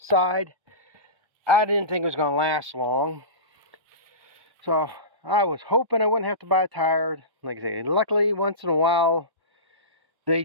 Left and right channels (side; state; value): left; late; 1.0 ms